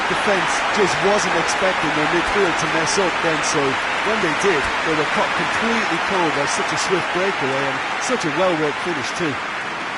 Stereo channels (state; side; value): identical; both; correlation 1.00